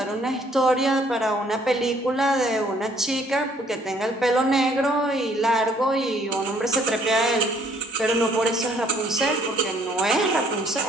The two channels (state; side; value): normal; both; correlation 0.62